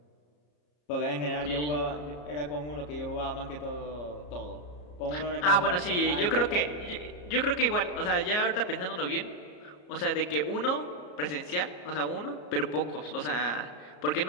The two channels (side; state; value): right; late; 34 ms